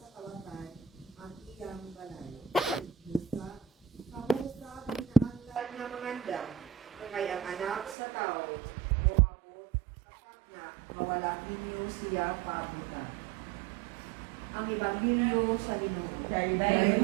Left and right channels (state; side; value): drops out; left; at 8.0 s